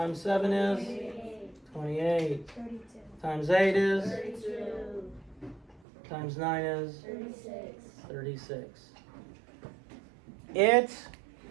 7 is 28, times 8 is 32. Times 9 is 36. 36. It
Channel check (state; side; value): drops out; left; at 5.8 s